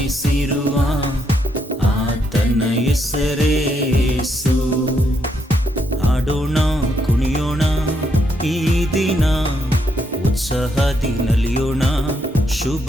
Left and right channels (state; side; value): normal; both; correlation 0.76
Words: ಆತನ ಹೆಸರೇ ಯೇಸು. ಆಡೋಣ ಕುಣಿಯೋಣ ಈ ದಿನ, ಉತ್ಸಾಹದಿ ನಲಿಯೋಣ ಶುಭ